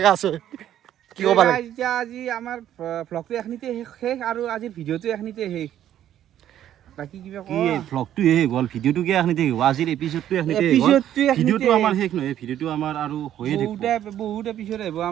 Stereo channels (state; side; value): quieter; left; 11.3 dB